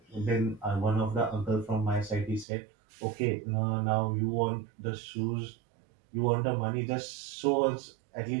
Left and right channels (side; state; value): left; drops out; at 2.5 s